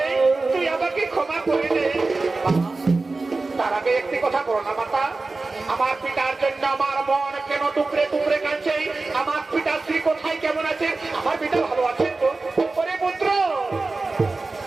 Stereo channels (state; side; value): quieter; left; 3.6 dB